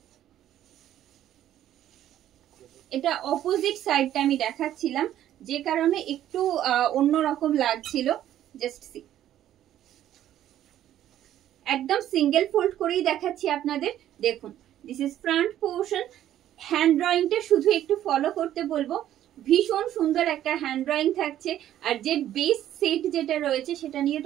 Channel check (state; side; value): quieter; left; 11.9 dB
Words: এটা অপোজিট সাইডটা আমি দেখাচ্ছিলাম, যে কারণে একটু অন্যরকম লাগছিল. Just see, একদম সিঙ্গেল ফোল্ড করেই দেখাচ্ছি আপনাদের. দেখুন, this is front portion. Hand ড্রয়িংটা শুধু একটু ফলো করতে বলবো. ভীষণ সুন্দর একটা হ্যান্ড ড্রয়িং থাকছে. আর যে বেস সেট যেটা রয়েছে সেটা নিয়ে